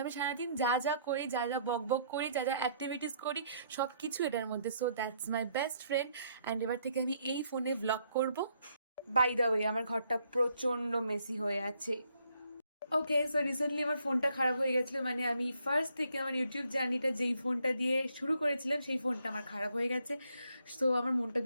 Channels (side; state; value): both; inverted; correlation -0.69